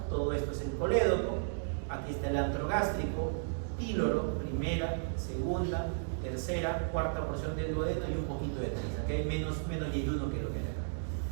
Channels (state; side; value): silent; left; digital silence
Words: todo esto es el colédoco, aquí está el antro gástrico, píloro, primera, segunda, tercera, cuarta porción del duodeno y un poquito de Treitz. Aquí hay menos yeyuno que lo que hay acá.